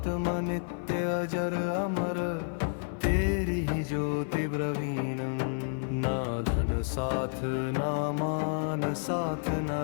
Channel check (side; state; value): right; silent; 55 dB below the other